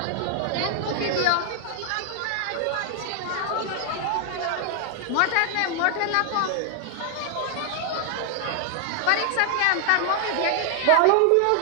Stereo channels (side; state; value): both; different; correlation 0.00